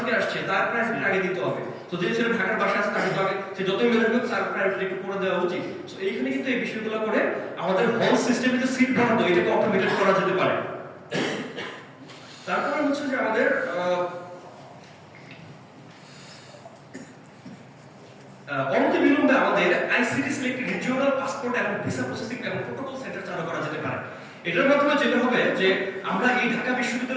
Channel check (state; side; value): identical; both; correlation 1.00